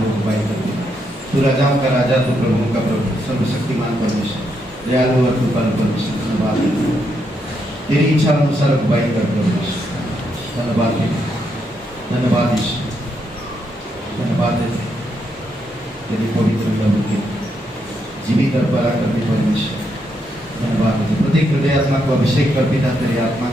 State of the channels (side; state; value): both; normal; correlation 0.79